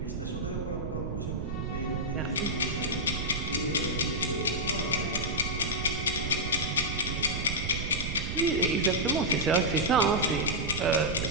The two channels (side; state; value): right; noise; rumble, 3 dB below the sound